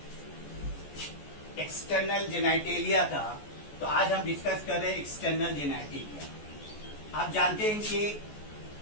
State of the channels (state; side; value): late; right; 14 ms